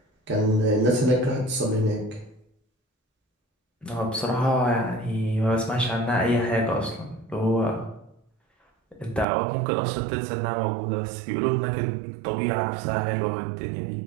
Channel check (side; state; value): left; drops out; at 9.2 s